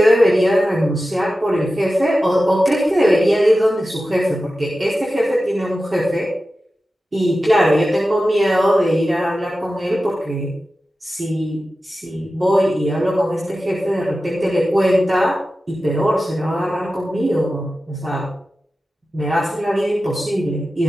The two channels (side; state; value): both; normal; correlation 0.94